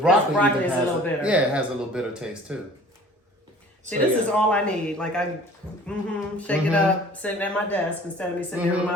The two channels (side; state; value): both; normal; correlation 0.48